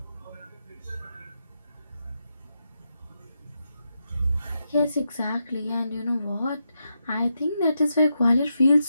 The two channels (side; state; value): both; inverted; correlation -0.85